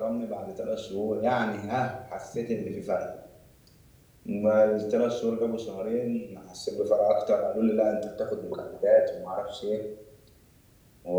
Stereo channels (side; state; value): both; identical; correlation 1.00